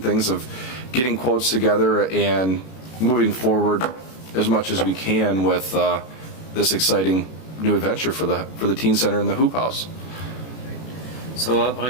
of getting quotes together and moving forward as much as we can with this exciting new adventure for the teen center and the Hoop House. So the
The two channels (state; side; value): late; right; 32 ms